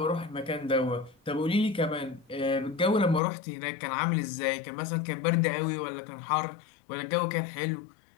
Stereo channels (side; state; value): right; drops out; at 3.2 s